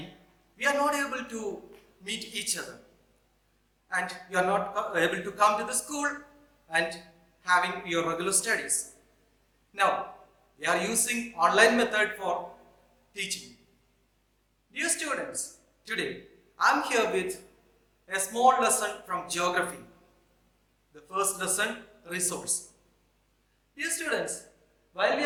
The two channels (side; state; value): both; identical; correlation 1.00